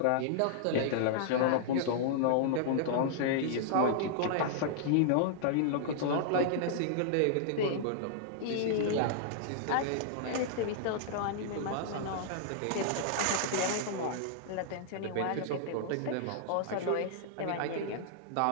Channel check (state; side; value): different; both; correlation -0.01